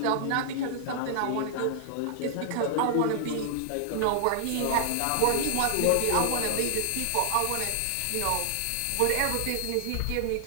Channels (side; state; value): both; different; correlation -0.01